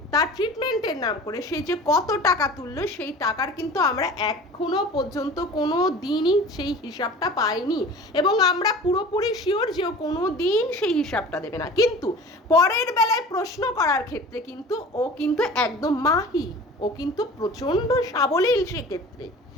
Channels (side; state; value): both; normal; correlation 0.40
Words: তার ট্রিটমেন্টের নাম করে সে যে কত টাকা তুললো, সেই টাকার কিন্তু আমরা এখনো পর্যন্ত কোনো দিনই সেই হিসাবটা পাইনি, এবং আমরা পুরোপুরি শিওর যে কোনো দিন সেই হিসাবটা দেবে না। কিন্তু পরের বেলায় প্রশ্ন করার ক্ষেত্রে কিন্তু ও কিন্তু একদম মাহি, ও কিন্তু প্রচণ্ড সাবলীল, সেক্ষেত্রে